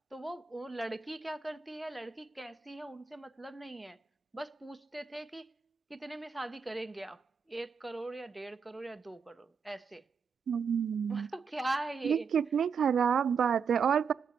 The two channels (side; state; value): left; quieter; 5.9 dB